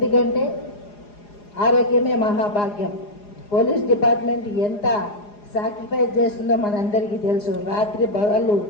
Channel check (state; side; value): late; right; 4.9 ms